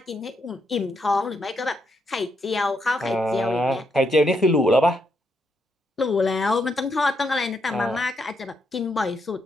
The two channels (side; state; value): both; normal; correlation 0.79